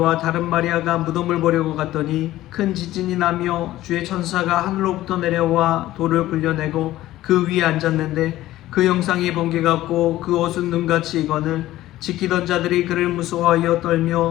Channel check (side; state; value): right; quieter; 15.2 dB